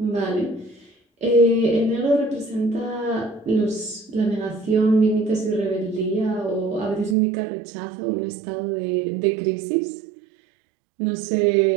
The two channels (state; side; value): drops out; left; at 7.2 s